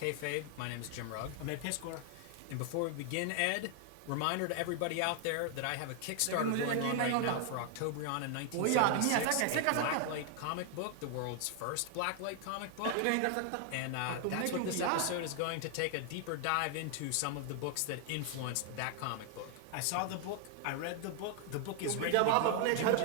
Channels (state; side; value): different; both; correlation 0.00